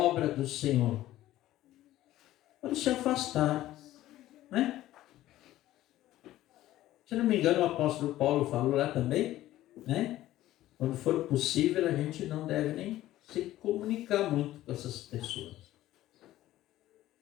do Senhor. Pode se afastar, né? Se não me engano, o apóstolo Paulo falou lá também, né? Quando for possível, a gente não deve nem se comunicar muito com essas pessoas.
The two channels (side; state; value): right; quieter; 14.7 dB